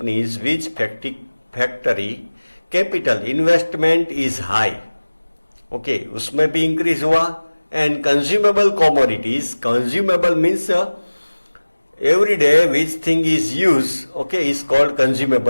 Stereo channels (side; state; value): both; inverted; correlation -1.00